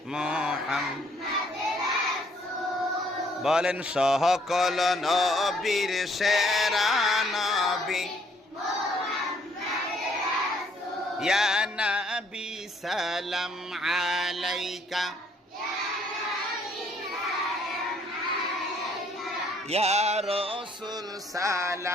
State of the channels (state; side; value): normal; both; correlation 0.65